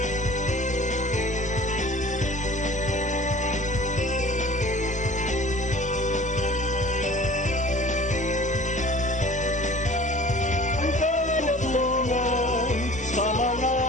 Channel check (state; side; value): normal; both; correlation 0.45